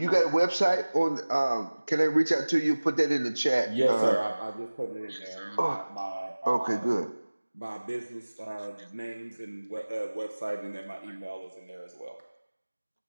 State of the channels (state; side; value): inverted; both; correlation -1.00